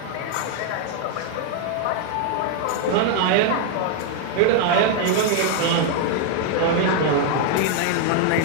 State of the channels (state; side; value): different; both; correlation 0.00